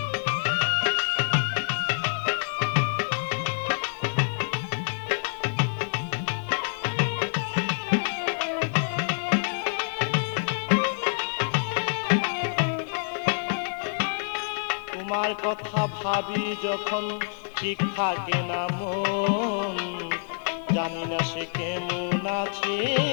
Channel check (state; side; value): silent; right; 60 dB below the other